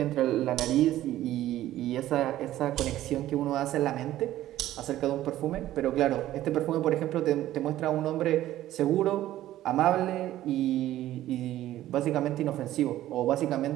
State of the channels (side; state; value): left; quieter; 14.0 dB